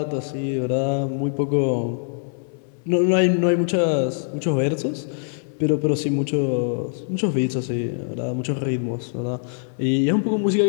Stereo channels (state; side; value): silent; right; 63 dB below the other